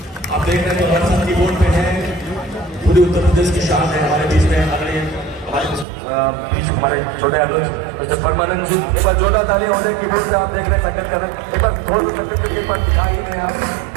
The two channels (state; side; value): drops out; left; at 5.9 s